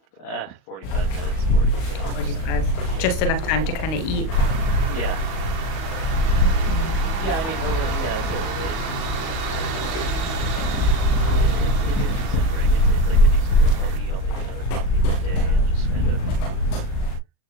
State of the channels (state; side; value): late; right; 37 ms